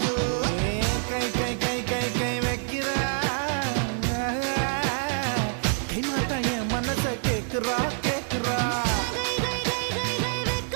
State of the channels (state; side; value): silent; left; digital silence